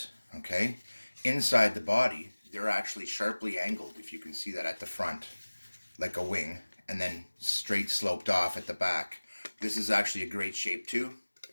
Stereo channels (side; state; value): both; inverted; correlation -1.00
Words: okay? Inside the body, they're actually sharply angled, if you can see that at the front, like a wing, and then straight sloped off at the back. This is actually a great shape too.